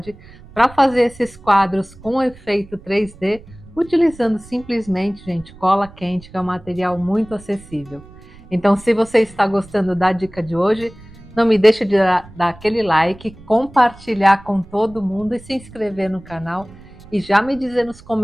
para fazer esses quadros com efeito 3D, utilizando simplesmente, gente, cola quente, que é um material muito acessível. Então, se você está gostando da dica de hoje, não me deixe de dar aquele like, compartilhar com todo mundo e se inscrever no canal e já me dizer nos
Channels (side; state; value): right; noise; rumble, 21 dB below the sound